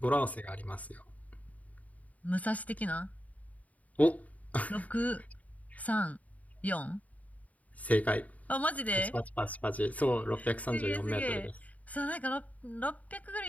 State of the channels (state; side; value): late; right; 0.071 ms